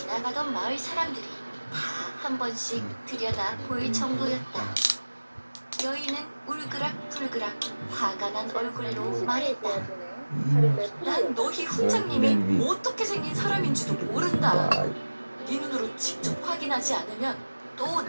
마을 사람들이 다 한 번씩 들여다 보일 정도였다. 여인은 울그락불그락 화가 난 얼굴로 말했다. 난 너희 훈장님이 어떻게 생긴 사람인지도 모른다. 네 눈으로 직접 확인하지 않으면 또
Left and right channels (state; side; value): inverted; both; correlation -1.00